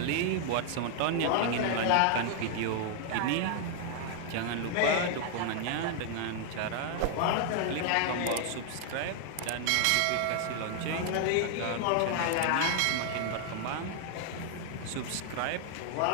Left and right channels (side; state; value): both; different; correlation 0.00